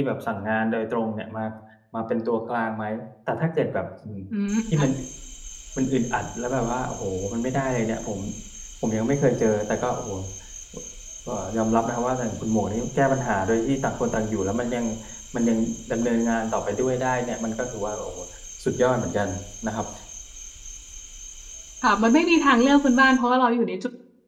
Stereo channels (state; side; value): identical; both; correlation 1.00